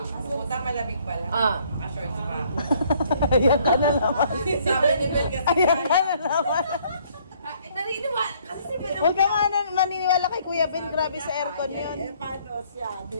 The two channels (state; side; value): inverted; both; correlation -0.63